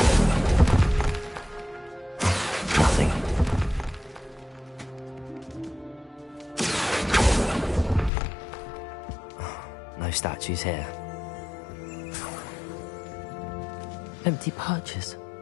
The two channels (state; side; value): drops out; right; at 8.1 s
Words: Statues here. Empty perches.